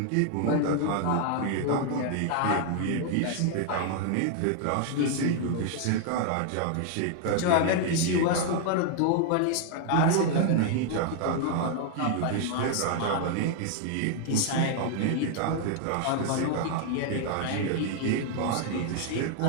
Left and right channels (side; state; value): both; different; correlation 0.00